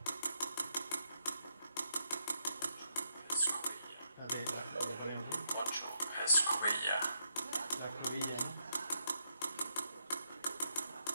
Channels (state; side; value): inverted; both; correlation -0.80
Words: Lo ponemos. 8 escobilla. La escobilla, ¿no?